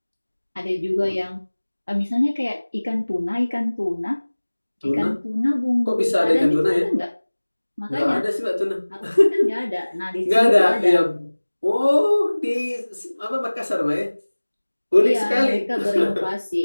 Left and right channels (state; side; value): inverted; both; correlation -1.00